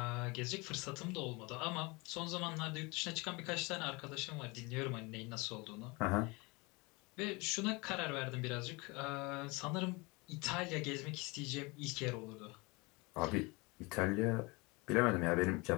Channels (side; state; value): right; quieter; 26.6 dB